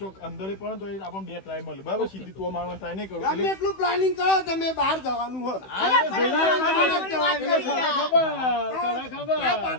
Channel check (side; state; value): right; late; 16 ms